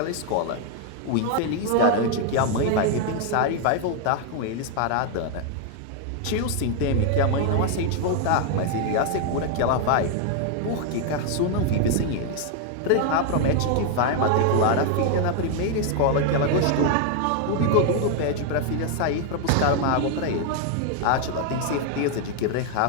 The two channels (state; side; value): different; both; correlation 0.01